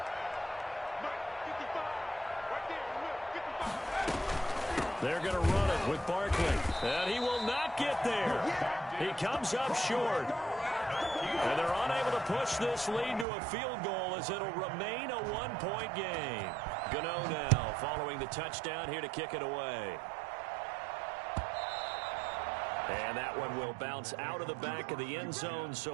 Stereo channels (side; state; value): left; drops out; at 13.2 s